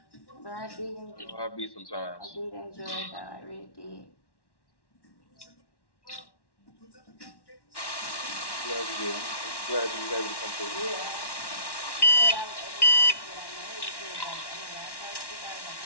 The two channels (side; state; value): right; late; 1.1 ms